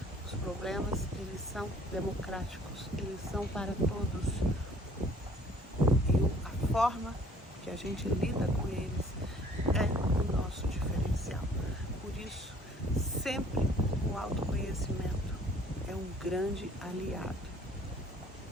Os problemas, eles são democráticos, eles são para todos. E a forma que a gente lida com eles é o nosso diferencial. Por isso, sempre o autoconhecimento é um grande aliado.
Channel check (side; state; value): both; normal; correlation 0.56